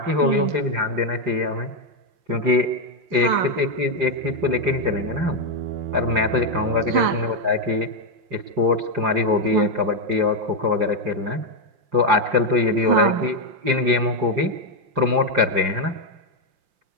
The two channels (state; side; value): late; left; 5.7 ms